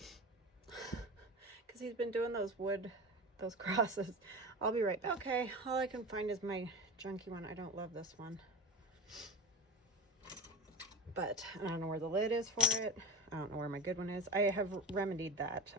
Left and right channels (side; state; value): both; normal; correlation 0.27